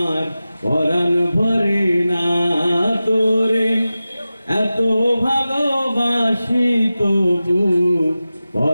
পরাণ ভরে না তোরে, এত ভালোবাসি তবু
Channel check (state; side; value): inverted; both; correlation -0.95